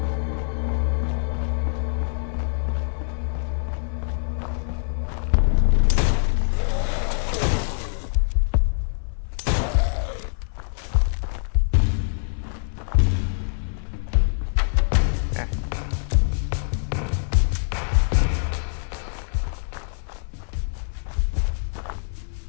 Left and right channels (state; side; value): silent; right; 62 dB below the other